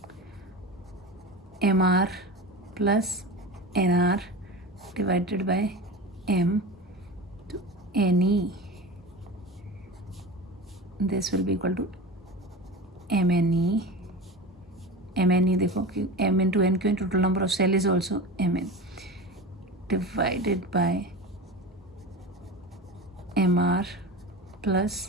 MR plus NR divided by M to NE. this will be equal to MNE. MNE देखो कि M into N क्यों, total number of cell is also Mn divided by MR plus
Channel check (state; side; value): normal; both; correlation 0.29